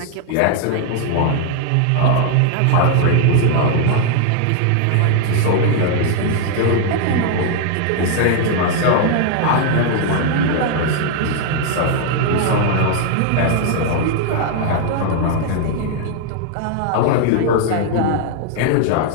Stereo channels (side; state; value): both; different; correlation 0.00